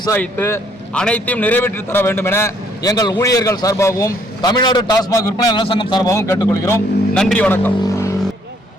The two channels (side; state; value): both; normal; correlation 0.66